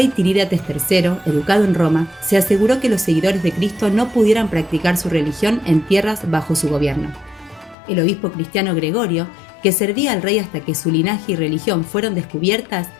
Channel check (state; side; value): drops out; right; at 7.8 s